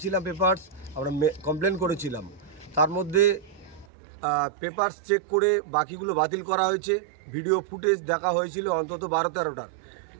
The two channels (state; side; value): drops out; left; at 3.9 s